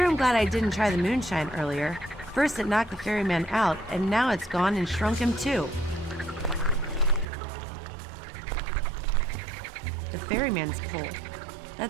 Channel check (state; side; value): drops out; left; at 7.3 s